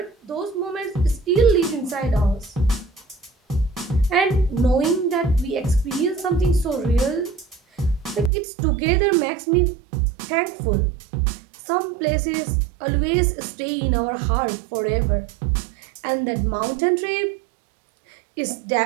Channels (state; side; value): drops out; left; at 8.3 s